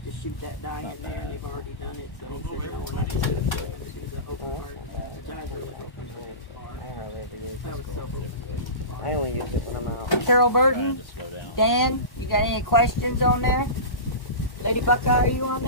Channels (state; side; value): late; right; 1.1 ms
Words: to shoot that dye in there, and they've already done it. So he said, no, we're not going to do the open heart, which I really hope we do. I was so hoping. I only use it when I'm out. Carol Trying Burton, to slow down. Dan, you got any questions on there? Lady Buckeye, are you on